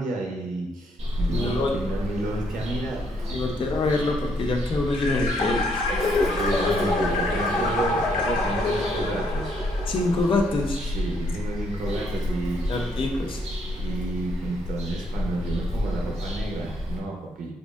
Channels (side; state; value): both; normal; correlation 0.71